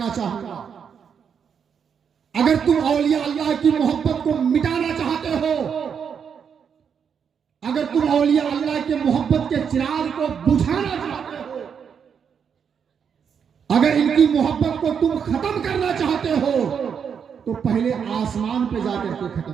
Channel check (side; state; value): left; quieter; 7.1 dB